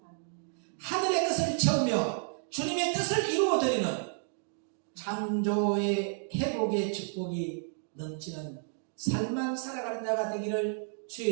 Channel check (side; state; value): left; silent; 57 dB below the other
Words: 하늘의 뜻을 채우며 주님의 뜻을 이루어드리는 창조의 회복의 축복이 넘치는 삶만 살아가는 자가 되기를 주의